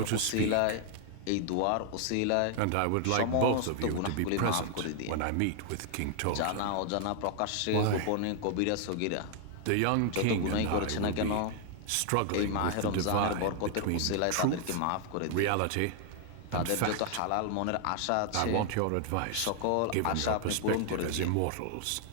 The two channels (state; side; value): different; both; correlation 0.00